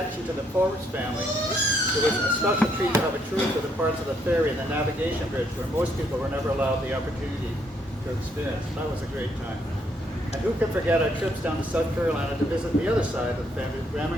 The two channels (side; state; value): both; normal; correlation 0.72